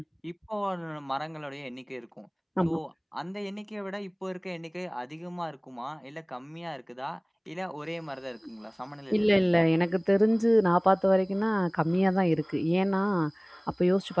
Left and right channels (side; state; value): both; identical; correlation 1.00